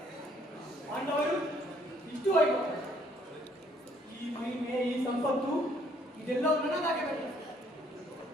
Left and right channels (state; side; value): normal; both; correlation 0.65